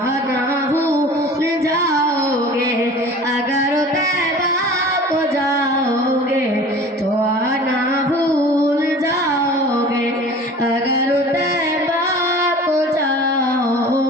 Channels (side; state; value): both; normal; correlation 0.42